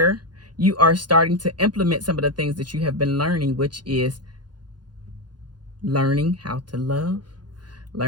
you are starting to implement some of the things that you have been learning, which is learning how to love,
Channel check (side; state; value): left; late; 0.70 ms